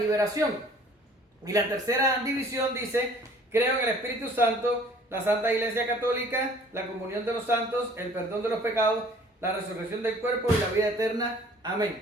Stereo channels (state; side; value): normal; both; correlation 0.53